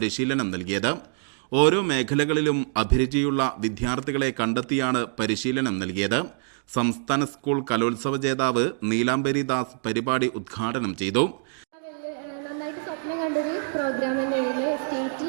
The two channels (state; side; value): silent; left; digital silence